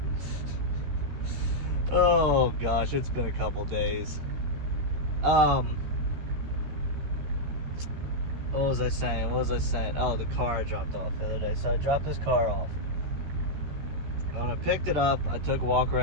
gosh, it's been a couple days. What was I saying? Oh, the car I dropped off the other day. So I dropped this car off. And when I picked it up, I took a walk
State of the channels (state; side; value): late; left; 14 ms